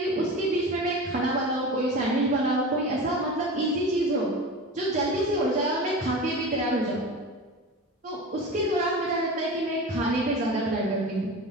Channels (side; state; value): both; normal; correlation 0.31